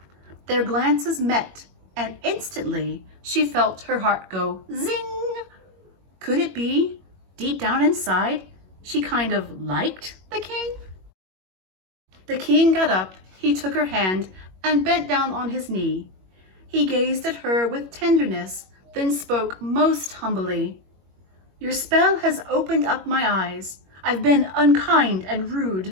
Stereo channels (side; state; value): left; late; 21 ms